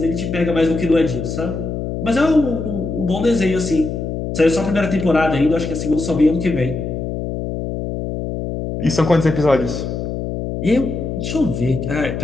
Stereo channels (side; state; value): left; noise; hum, 4 dB below the sound